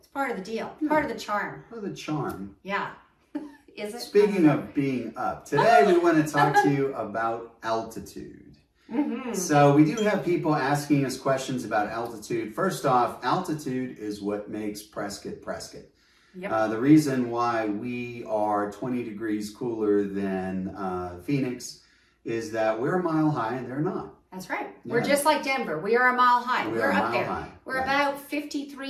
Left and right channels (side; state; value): both; identical; correlation 1.00